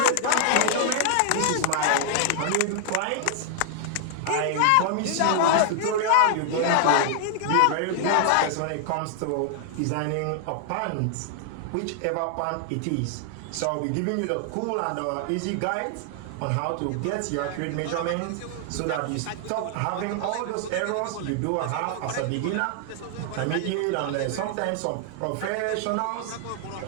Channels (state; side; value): different; both; correlation 0.00